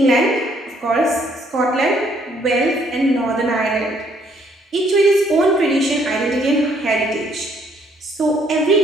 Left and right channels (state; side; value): normal; both; correlation 0.66